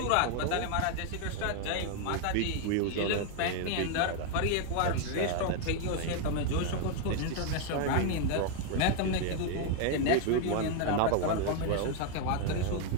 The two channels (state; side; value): different; both; correlation 0.01